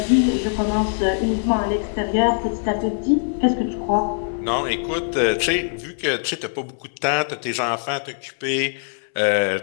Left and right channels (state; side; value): silent; right; 64 dB below the other